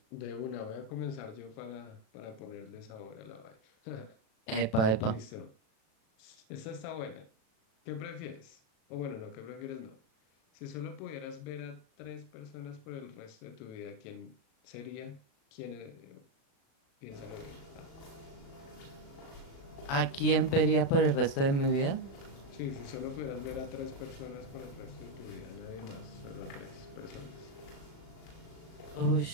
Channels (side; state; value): right; late; 36 ms